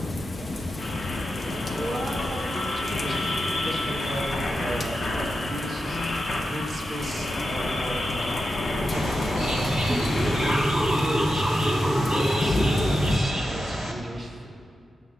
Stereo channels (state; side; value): normal; both; correlation 0.89